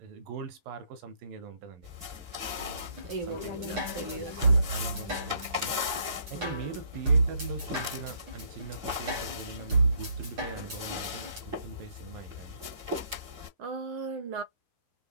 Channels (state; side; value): late; left; 7.9 ms